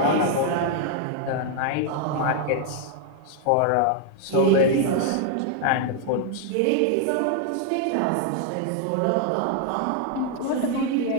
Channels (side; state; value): both; different; correlation 0.00